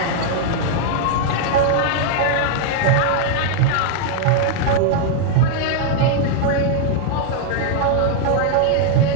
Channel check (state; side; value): different; both; correlation -0.01